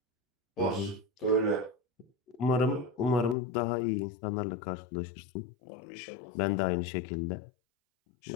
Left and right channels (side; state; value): right; drops out; at 3.4 s